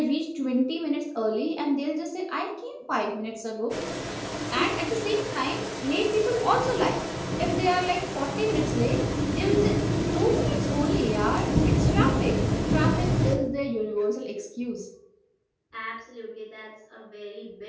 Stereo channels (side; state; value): both; identical; correlation 1.00